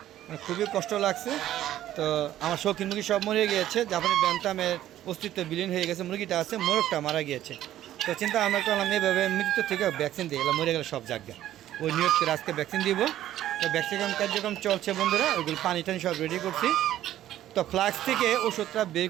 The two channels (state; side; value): quieter; left; 12.8 dB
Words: খুবই কষ্ট লাগছে। তো আমার শৌখিন মুরগি সব মরে গিয়েছে, জাপানি ব্যান্থামের অস্তিত্ব বিলীন হয়ে গেছে। মুরগিটা আছে, মোরগটা মারা গিয়েছে। তো চিন্তা আমরা করলাম এইভাবে মৃত্যু থেকে ভ্যাকসিন দিয়ে গেলাম, মরে গেলে সব জায়গা ওই নিয়োগ করে আজকে ভ্যাকসিন দিব। তো ভ্যাকসিন কার্যক্রম চলছে বন্ধুরা, ওইগুলো পানি টানি সব রেডি করছি। তো ফ্লাক্স থেকে ওষুধটা বের